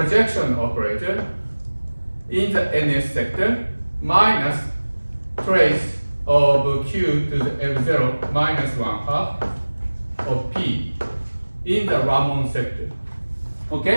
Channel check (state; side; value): inverted; both; correlation -1.00